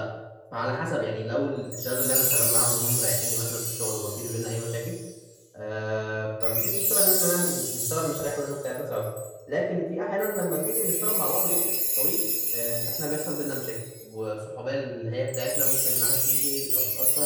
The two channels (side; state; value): both; identical; correlation 1.00